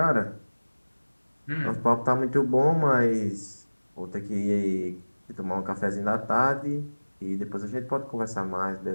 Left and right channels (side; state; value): both; inverted; correlation -1.00